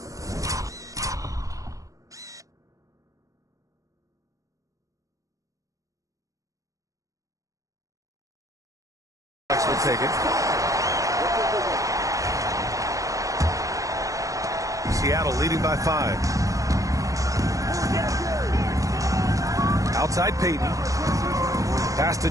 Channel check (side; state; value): left; late; 0.16 ms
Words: Will take it. Seattle leading by 5. Outside Payton. Pass to